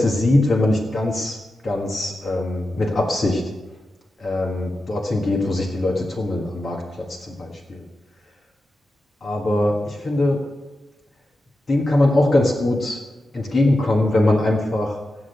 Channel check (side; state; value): both; normal; correlation 0.91